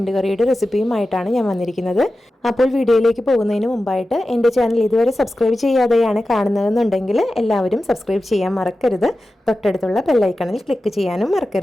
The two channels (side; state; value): both; normal; correlation 0.93